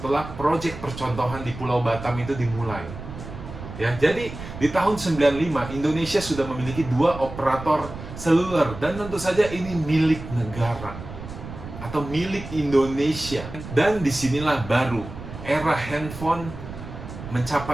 proyek percontohan di Pulau Batam itu dimulai. Ya, jadi di tahun 95 Indonesia sudah memiliki 2 operator seluler, dan tentu saja ini milik negara atau milik Indonesia. Dan disinilah baru era handphone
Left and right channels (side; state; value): right; noise; rumble, 11 dB below the sound